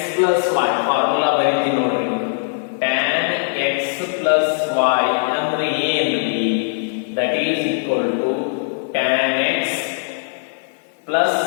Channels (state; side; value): silent; right; digital silence